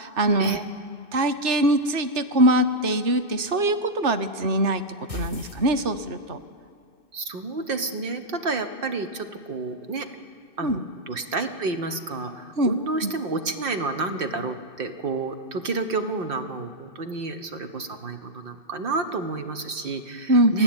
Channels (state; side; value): late; left; 2.6 ms